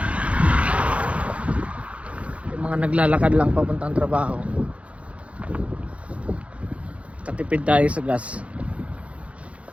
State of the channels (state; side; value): late; left; 0.063 ms